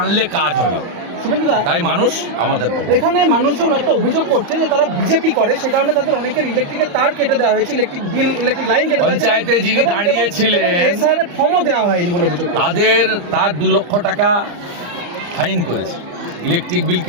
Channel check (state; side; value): late; left; 34 ms